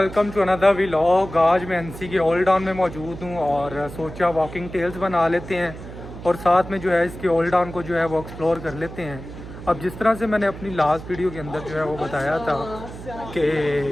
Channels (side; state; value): right; noise; hum, 13 dB below the sound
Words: to another vlog. आज मैं एनसी के ओल्ड टाउन में मौजूद हूँ और सोचा वॉकिंग टेल्स बना लेते हैं और साथ में जो है इसके ओल्ड टाउन को जो है वो एक्सप्लोर कर लेते हैं। अब जिस तरह से मैंने अपनी लास्ट वीडियो के अंदर जो है वो बताया था कि